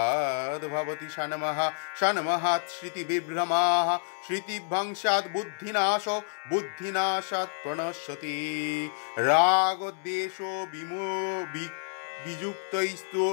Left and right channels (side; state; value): right; silent; 59 dB below the other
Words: भवति षण्मः षण्महात् श्रुतिविभ्रमाः श्रुतिभंशात् बुद्धिनाशो बुद्धिनाशात् प्रणश्यति रागद्वेषो वियुक्तैस्तु